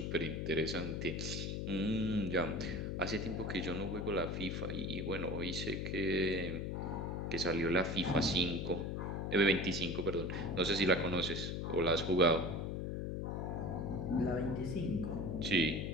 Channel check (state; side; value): noise; left; hum, 2 dB below the sound